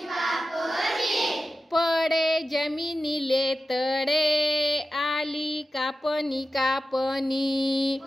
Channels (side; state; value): both; normal; correlation 0.93